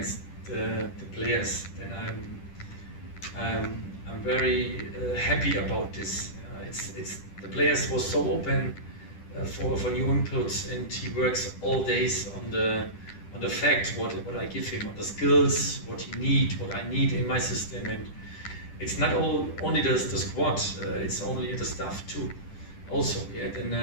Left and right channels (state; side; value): late; right; 10 ms